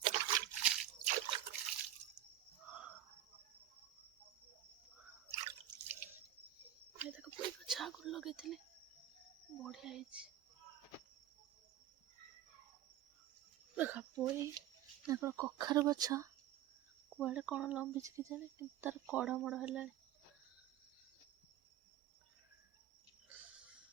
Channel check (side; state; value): left; quieter; 12.3 dB